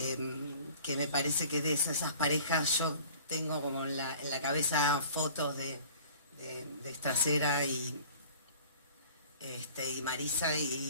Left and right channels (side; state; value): both; inverted; correlation -0.48